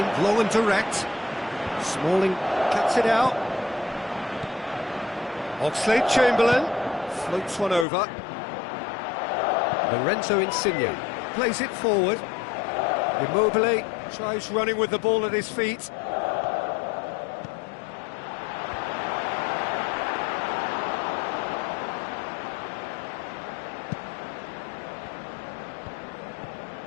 long and direct. Smalling cuts it out. Oxlade-Chamberlain floats one over. Lorenzo Insigne plays it forward. Immobile tries running with the ball at his feet.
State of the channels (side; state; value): right; drops out; at 7.9 s